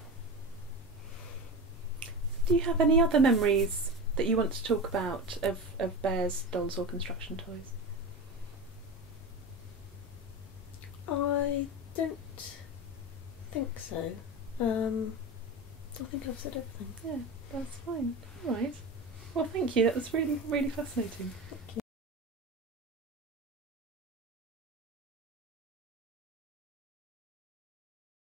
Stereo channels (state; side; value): normal; both; correlation 0.26